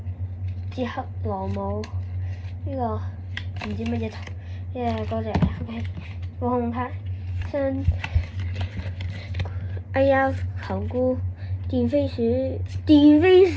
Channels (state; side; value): identical; both; correlation 1.00